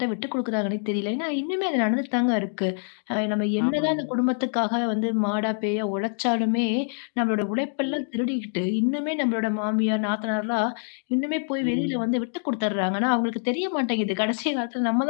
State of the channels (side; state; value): right; silent; digital silence